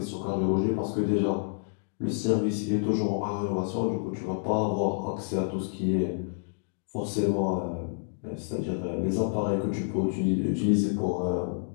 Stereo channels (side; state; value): right; silent; digital silence